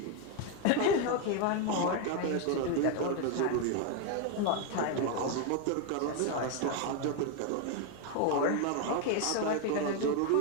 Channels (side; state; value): both; different; correlation 0.01